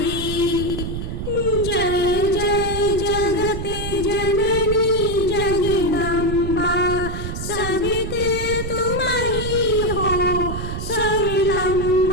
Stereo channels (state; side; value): noise; right; rumble, 5 dB below the sound